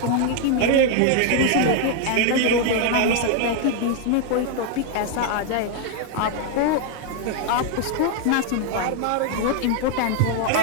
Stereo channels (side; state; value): both; different; correlation 0.01